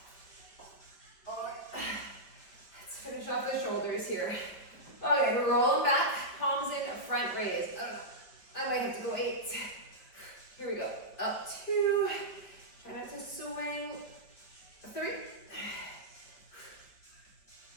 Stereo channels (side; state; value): right; late; 5.2 ms